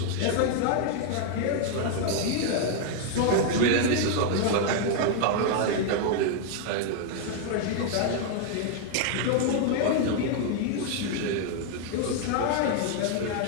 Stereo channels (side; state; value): both; different; correlation 0.00